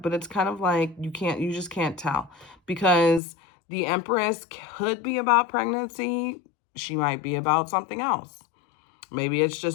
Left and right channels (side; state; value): right; drops out; at 3.2 s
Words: But it's kind of like you just can't tell, because the Empress could be about pregnancy. She might be about something else. Maybe it's